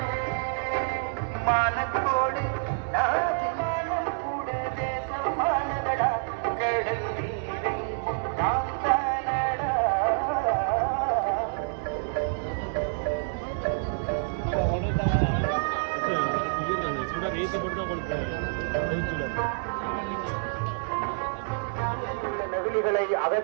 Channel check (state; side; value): silent; left; digital silence